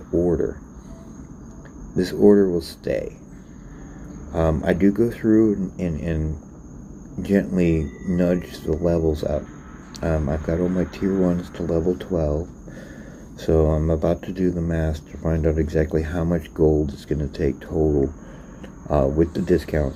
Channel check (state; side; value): identical; both; correlation 1.00